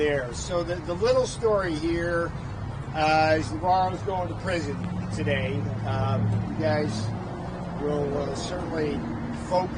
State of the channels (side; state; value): both; identical; correlation 1.00